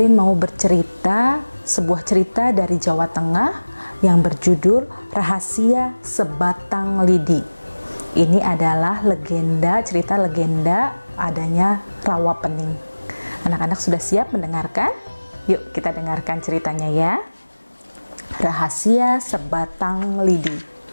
mau bercerita sebuah cerita dari Jawa Tengah yang berjudul Rahasia Sebatang Lidi. Ini adalah cerita legenda adanya rawa pening. Anak-anak sudah siap mendengarkan? Yuk kita dengarkan ceritanya ya. Rahasia Sebatang Lidi.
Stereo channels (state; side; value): inverted; both; correlation -1.00